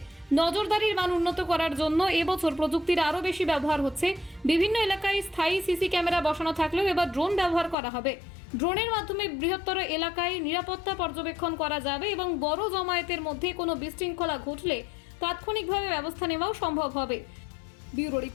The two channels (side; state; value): right; drops out; at 7.8 s